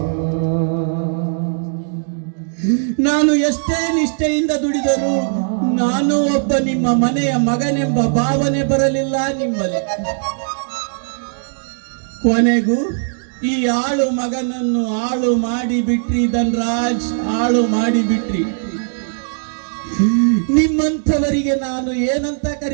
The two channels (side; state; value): left; silent; digital silence